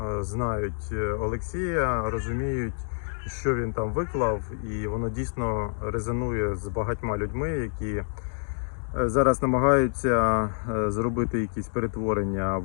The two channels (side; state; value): right; silent; digital silence